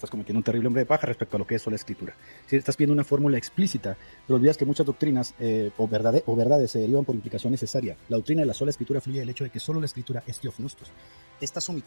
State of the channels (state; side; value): inverted; both; correlation -1.00